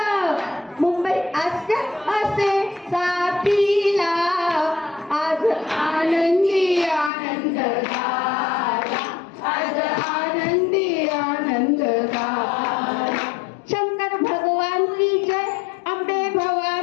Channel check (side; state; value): right; drops out; at 7.1 s